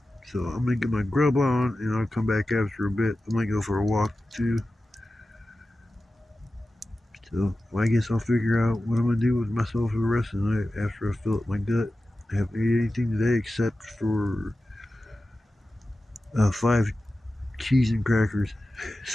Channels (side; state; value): both; normal; correlation 0.94